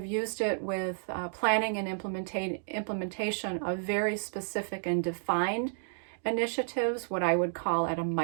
used it with planning and implementation of very specific and defined initiatives, what I would call at a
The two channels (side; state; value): left; silent; digital silence